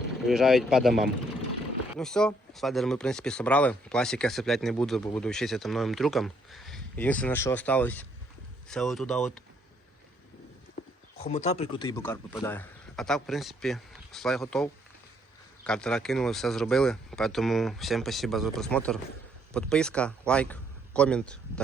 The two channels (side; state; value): both; normal; correlation 0.69